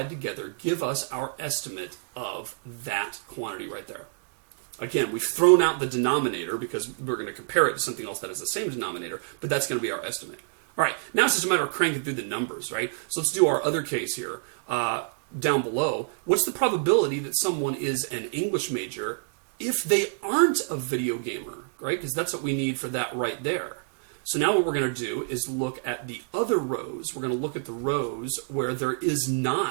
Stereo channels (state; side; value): silent; left; digital silence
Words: together give us our estimate of that quantity right there. Again, we've thrown out the denominator because we're going to compare it to something else that has the same denominator, but that's going to be our estimate. All right, now it's just a matter of cranking through the numbers, right? So let's do our other case here. Down below, what's the probability that someone is an English major if they aren't a video gamer, right? Because that's what we need for that right there. So now what we're going to do is look at the other rows. We're going to look at the rows where there is